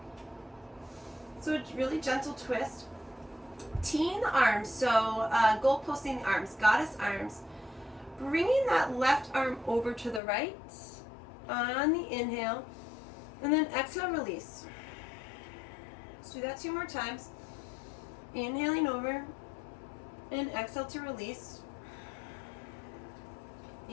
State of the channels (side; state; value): right; drops out; at 10.2 s